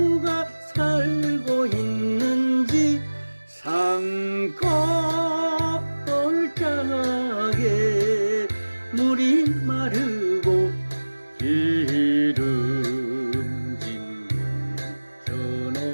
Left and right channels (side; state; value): both; inverted; correlation -1.00